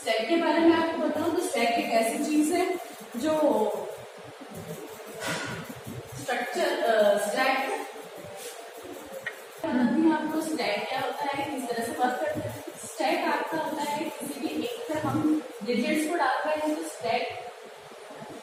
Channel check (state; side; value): identical; both; correlation 1.00